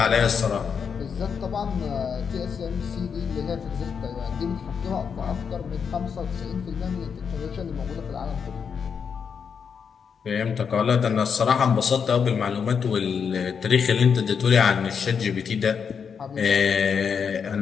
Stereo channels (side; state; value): right; quieter; 6.6 dB